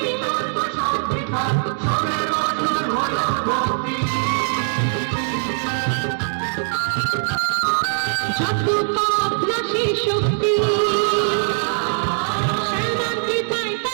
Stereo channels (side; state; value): left; silent; digital silence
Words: যত পাপ নাশে শক্তি, শ্যামার কৃপায়